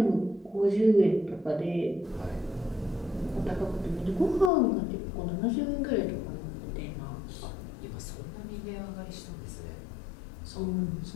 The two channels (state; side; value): drops out; right; at 4.5 s